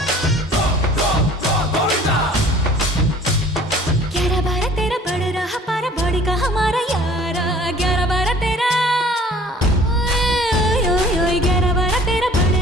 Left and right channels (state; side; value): normal; both; correlation 0.51